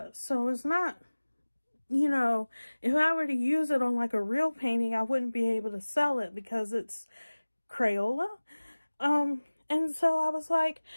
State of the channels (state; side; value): inverted; both; correlation -1.00